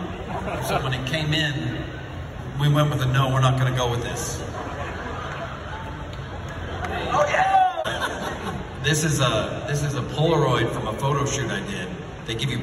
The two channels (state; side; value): identical; both; correlation 1.00